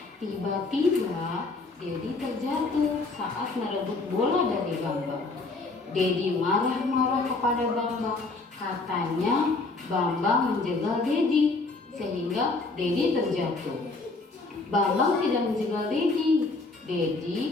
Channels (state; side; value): quieter; right; 3.6 dB